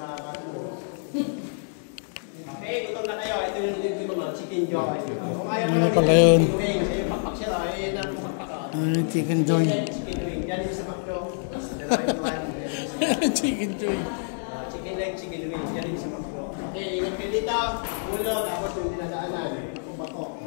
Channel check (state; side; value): silent; right; 60 dB below the other